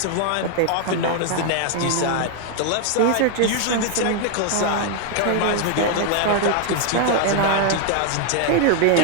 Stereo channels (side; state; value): both; different; correlation 0.00